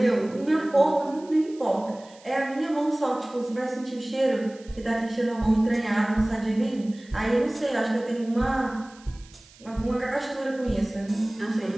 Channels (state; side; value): noise; right; hiss, 25 dB below the sound